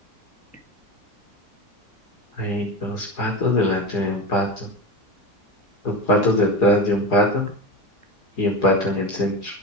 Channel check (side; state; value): both; normal; correlation 0.23